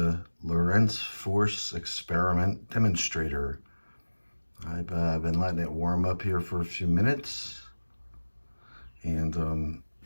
Lorentz force experiment demonstrator. I've been letting it warm up here for a few minutes, and I'm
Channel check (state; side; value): inverted; both; correlation -1.00